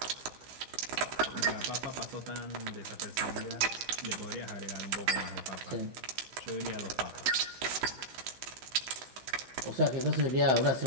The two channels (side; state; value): left; late; 15 ms